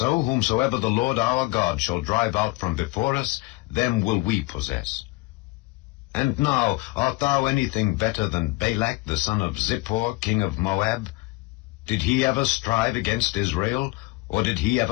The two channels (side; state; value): right; quieter; 22.4 dB